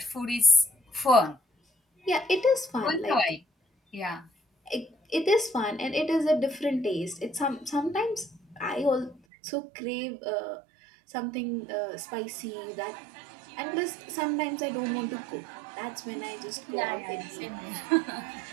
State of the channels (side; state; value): left; drops out; at 9.2 s